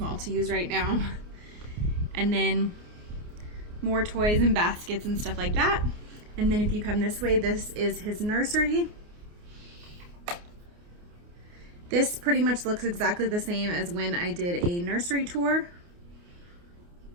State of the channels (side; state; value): left; late; 29 ms